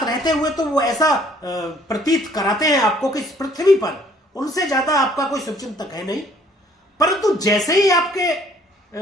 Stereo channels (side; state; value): both; normal; correlation 0.60